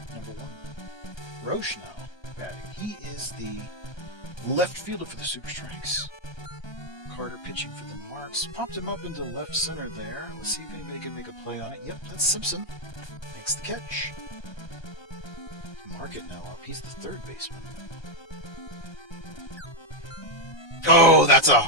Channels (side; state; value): right; late; 1.2 ms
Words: Number 1. Roche now batting. He is the left fielder for the Super Strikes. Carter pitching for the Marks. Popped him up into left center there. Let's see if anybody can make a play on it. Yep, that's Simpson. Makes the catch. Market now up. He's the third baseman. Oh, that's a